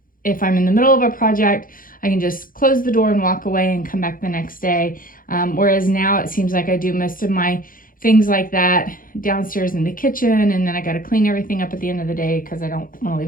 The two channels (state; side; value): late; right; 0.40 ms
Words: if I'm in the middle of a project, I can just close the door and walk away and come back the next day. Whereas now it seems like I do most of my things like that downstairs in the kitchen, and then I got to clean everything up at the end of the day because I don't want to